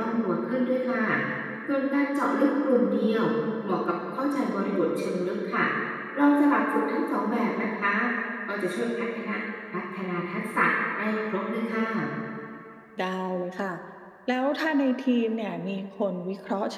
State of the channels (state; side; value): identical; both; correlation 1.00